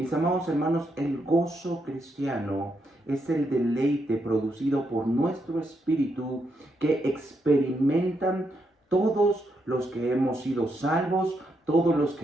amados hermanos, el gozo cristiano es el deleite producido por nuestro espíritu que experimentan todos los que hemos sido salvos, todos los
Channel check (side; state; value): both; normal; correlation 0.80